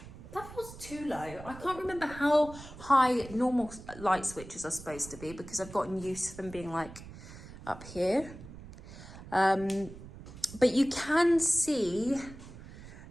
too low. I can't remember how high normal light switches are supposed to be because I've gotten used to them being like up here. But you can see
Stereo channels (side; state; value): right; noise; rumble, 15 dB below the sound